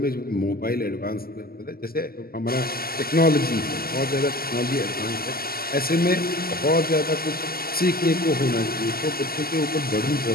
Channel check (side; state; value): right; late; 0.44 ms